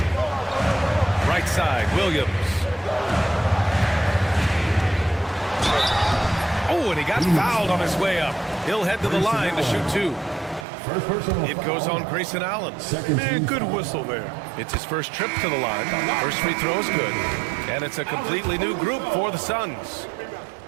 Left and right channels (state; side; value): drops out; left; at 10.7 s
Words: Right side, Williams. Oh, and he got fouled on his way up. He'll head to the line to shoot 2. First personal It goes on Grayson Allen. Man, good whistle there. It's his first trip to the line. First free throw is good. And it's a completely new group for the Suns.